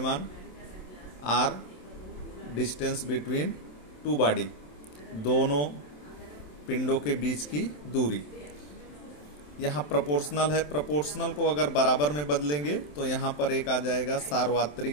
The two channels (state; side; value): late; right; 27 ms